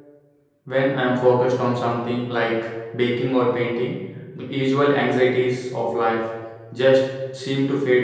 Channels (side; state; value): both; identical; correlation 1.00